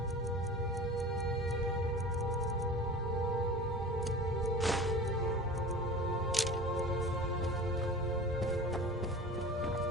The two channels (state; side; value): normal; both; correlation 0.36